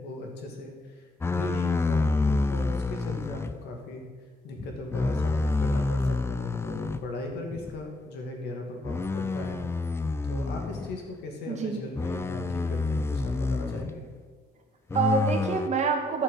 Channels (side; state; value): both; normal; correlation 0.73